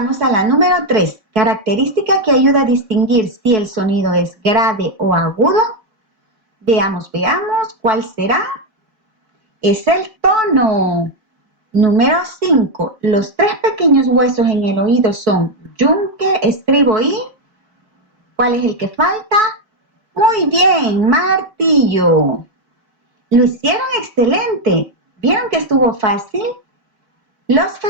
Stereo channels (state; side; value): late; left; 4.6 ms